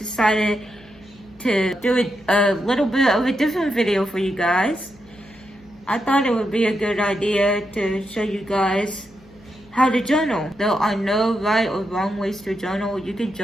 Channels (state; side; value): noise; left; hum, 26 dB below the sound